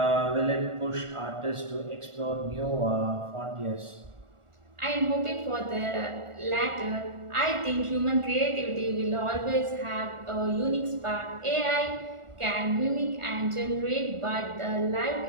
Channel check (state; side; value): late; left; 1.4 ms